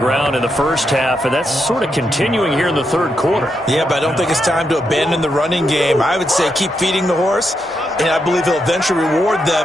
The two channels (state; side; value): normal; both; correlation 0.82